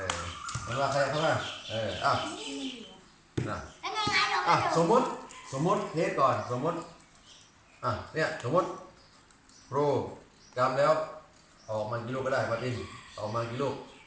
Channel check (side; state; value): both; identical; correlation 1.00